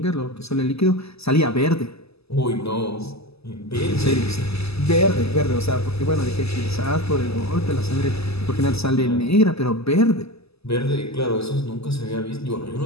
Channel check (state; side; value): late; right; 0.79 ms